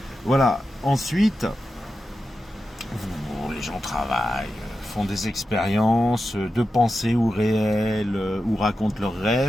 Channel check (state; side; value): normal; both; correlation 0.90